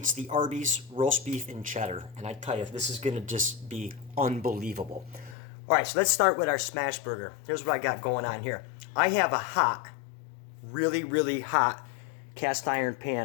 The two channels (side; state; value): right; drops out; at 5.4 s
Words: the Arby's roast beef and cheddar. And I tell you, this is going to just be unbelievable. All right, so let's start with our smash burger. Here's what I got going on here. I have a hot, really hot cast iron